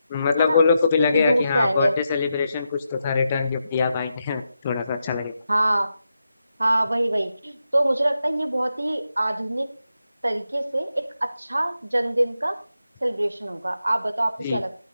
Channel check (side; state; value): both; inverted; correlation -0.86